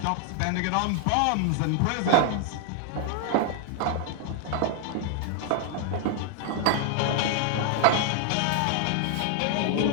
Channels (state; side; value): different; both; correlation 0.00